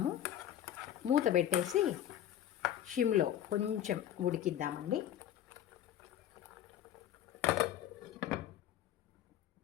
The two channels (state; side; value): quieter; right; 11.1 dB